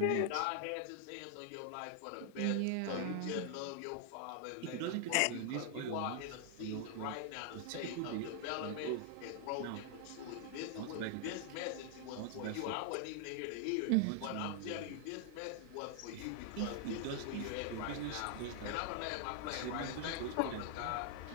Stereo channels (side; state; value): both; different; correlation 0.00